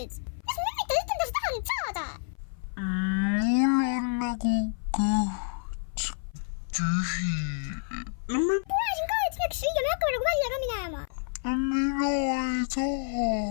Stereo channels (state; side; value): silent; right; 57 dB below the other